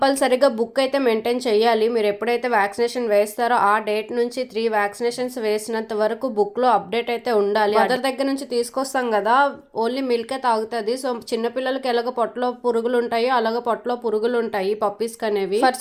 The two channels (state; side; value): identical; both; correlation 1.00